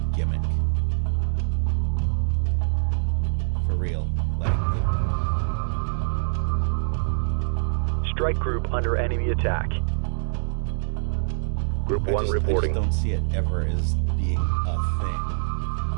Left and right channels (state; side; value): silent; left; digital silence